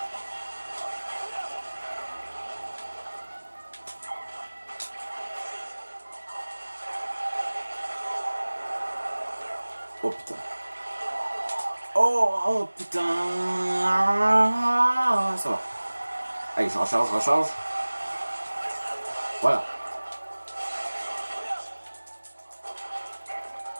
Oh putain. Oh putain. Ça va. Allez, je recharge. Voilà.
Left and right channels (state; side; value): inverted; both; correlation -1.00